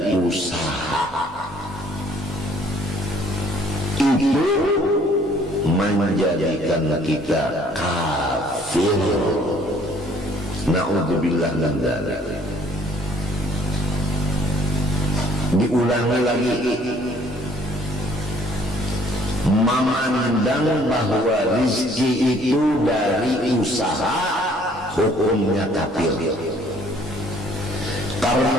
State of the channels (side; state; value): both; normal; correlation 0.60